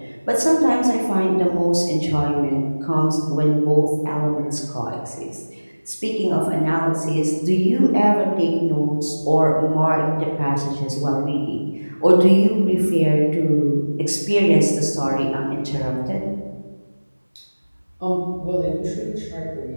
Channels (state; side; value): inverted; both; correlation -1.00